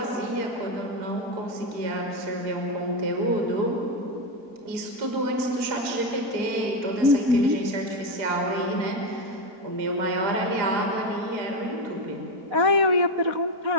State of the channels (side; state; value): left; late; 4.8 ms